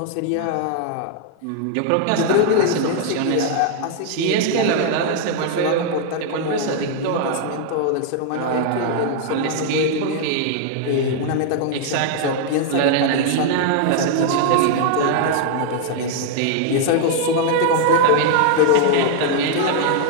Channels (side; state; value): both; different; correlation 0.00